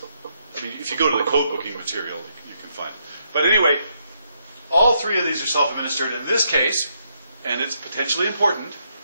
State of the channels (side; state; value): both; inverted; correlation -0.76